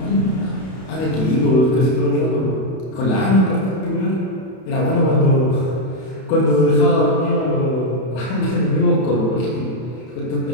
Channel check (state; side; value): late; right; 32 ms